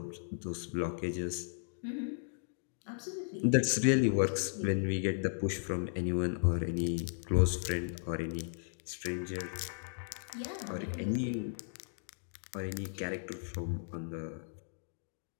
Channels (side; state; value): right; silent; digital silence